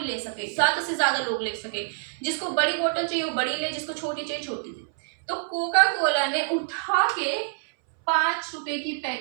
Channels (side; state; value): left; silent; 60 dB below the other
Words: ले सके, ज्यादा से ज्यादा लोग ले सके, जिसको बड़ी बोतल चाहिए वो बड़ी ले, जिसको छोटी चाहिए छोटी ले। तो कोका कोला ने उठा के 5 रुपए की